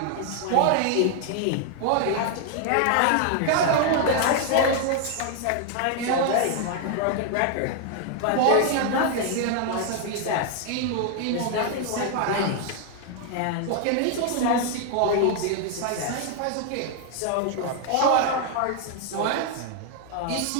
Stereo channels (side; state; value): both; different; correlation 0.00